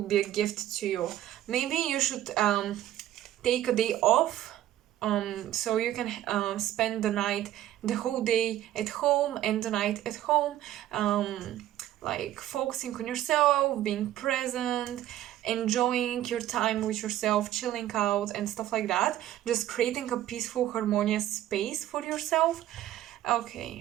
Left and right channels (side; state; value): left; quieter; 13.1 dB